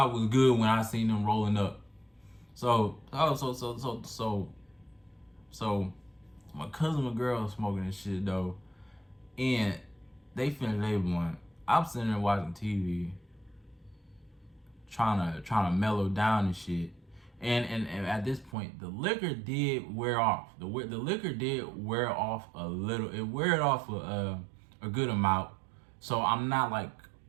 was good when I seen them rolling up. So my cousin and girl smoking and shit though. And they finished their blunt. I'm sitting there watching TV, trying to mellow down and shit. And at this point, the liquor did wear off. The liquor did wear off a little. It wear off a good amount. So I'm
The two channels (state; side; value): drops out; left; at 18.6 s